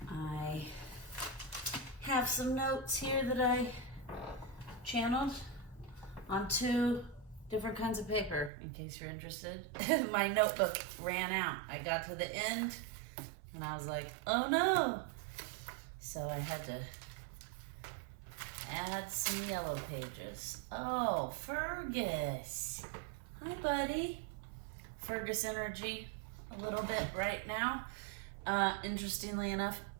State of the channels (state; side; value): drops out; left; at 8.5 s